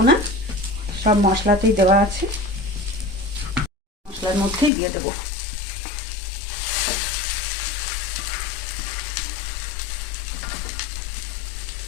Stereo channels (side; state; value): right; drops out; at 4.7 s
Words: না, সব মশলাতেই দেওয়া আছে, মশলার মধ্যেই দিয়ে দেবো।